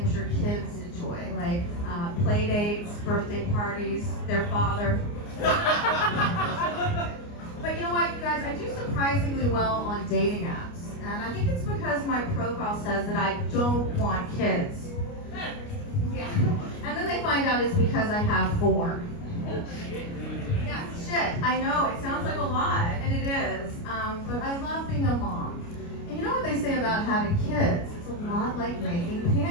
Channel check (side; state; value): right; late; 29 ms